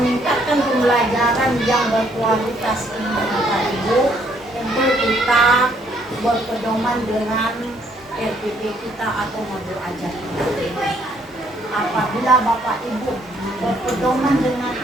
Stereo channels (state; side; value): normal; both; correlation 0.67